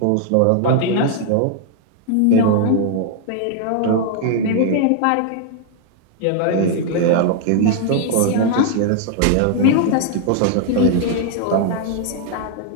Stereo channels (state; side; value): different; both; correlation 0.00